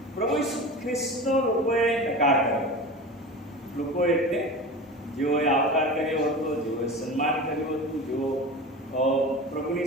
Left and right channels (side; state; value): both; normal; correlation 0.31